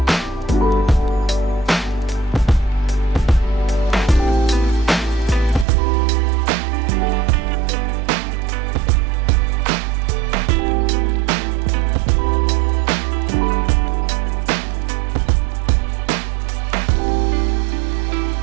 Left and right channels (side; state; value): left; drops out; at 5.7 s